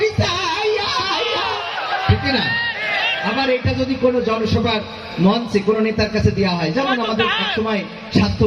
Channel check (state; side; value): identical; both; correlation 1.00